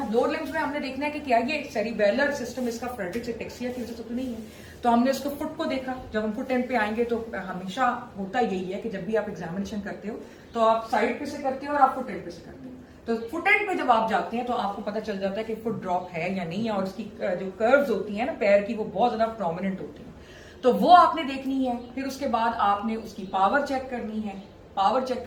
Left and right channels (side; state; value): both; identical; correlation 1.00